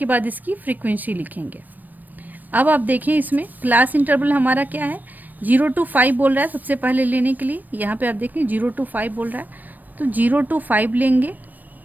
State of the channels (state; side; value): late; left; 0.087 ms